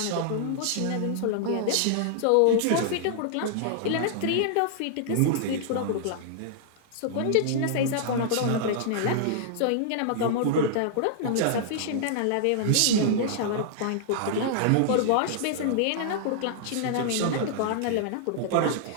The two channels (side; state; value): both; different; correlation -0.01